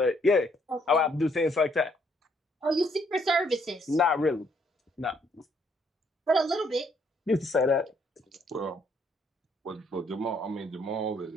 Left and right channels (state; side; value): normal; both; correlation 0.69